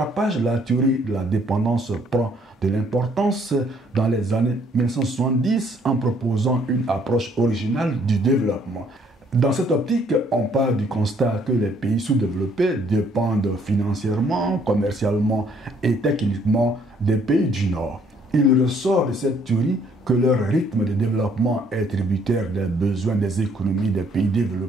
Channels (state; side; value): normal; both; correlation 0.64